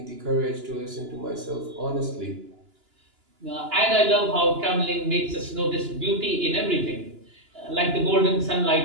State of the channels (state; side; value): late; left; 2.9 ms